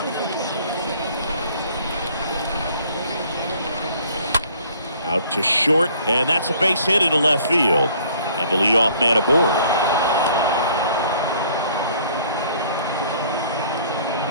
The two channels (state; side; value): inverted; both; correlation -0.57